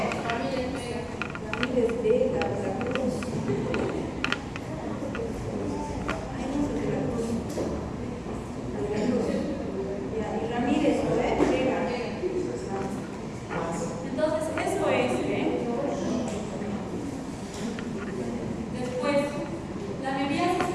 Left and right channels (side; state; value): both; identical; correlation 1.00